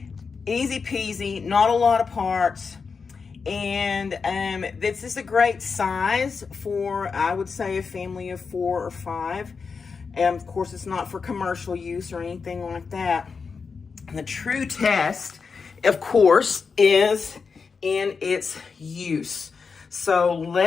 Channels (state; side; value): quieter; right; 5.2 dB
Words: Easy peasy, not a lot of parts. And this is a great size for, I would say, a family of 4 or 5. And of course, it's not for commercial use or anything like that. And the true test, of course, is in its use. So